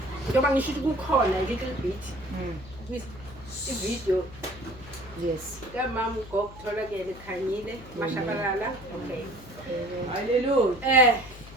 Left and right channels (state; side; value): noise; left; hum, 18 dB below the sound